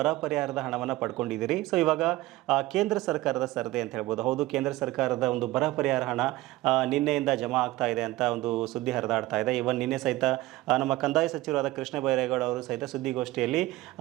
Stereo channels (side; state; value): left; quieter; 18.2 dB